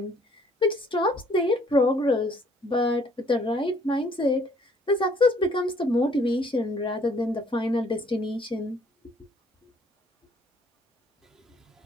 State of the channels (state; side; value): normal; both; correlation 0.62